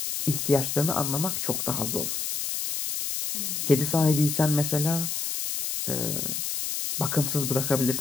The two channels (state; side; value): noise; left; hiss, 2 dB below the sound